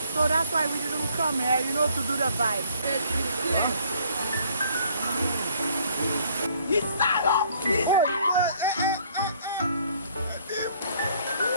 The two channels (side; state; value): both; inverted; correlation -0.61